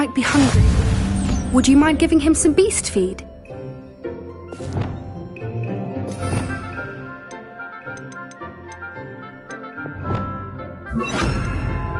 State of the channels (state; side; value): identical; both; correlation 1.00